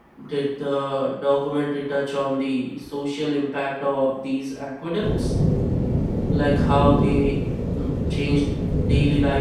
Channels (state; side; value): identical; both; correlation 1.00